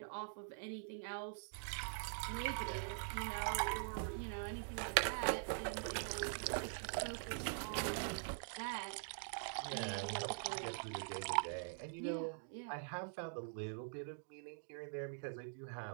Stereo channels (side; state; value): left; silent; digital silence